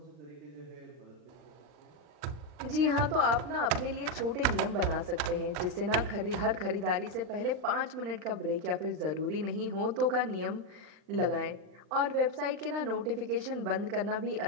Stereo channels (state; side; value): late; left; 39 ms